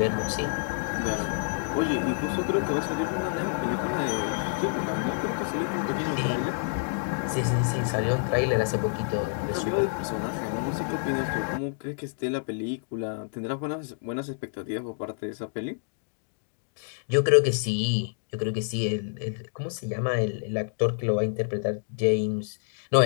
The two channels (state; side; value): silent; right; digital silence